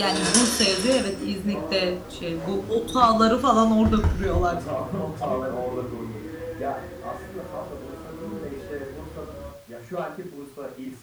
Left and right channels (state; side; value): identical; both; correlation 1.00